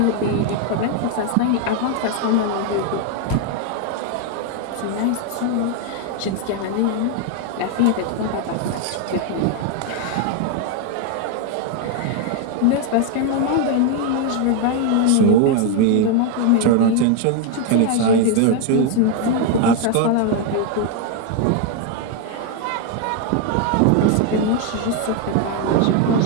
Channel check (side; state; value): both; different; correlation 0.01